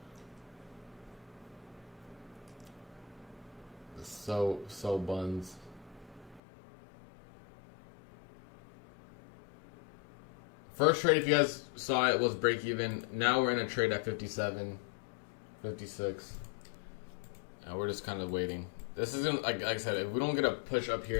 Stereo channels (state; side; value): drops out; right; at 6.4 s